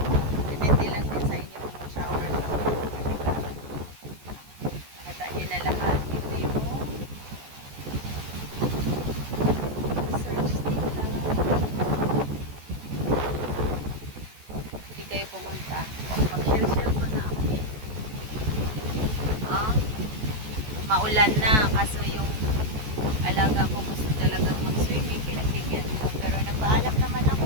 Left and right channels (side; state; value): left; late; 14 ms